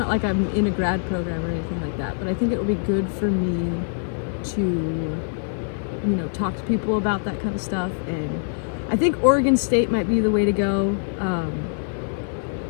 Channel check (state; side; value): silent; right; 63 dB below the other